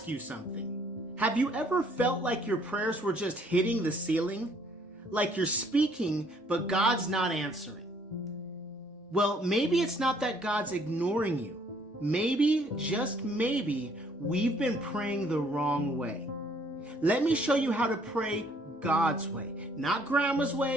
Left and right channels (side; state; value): both; normal; correlation 0.63